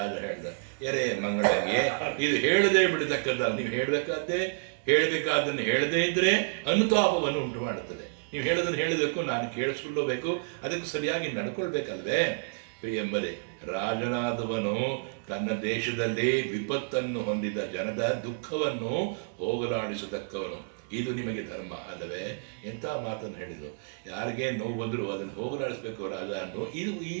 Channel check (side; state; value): left; silent; digital silence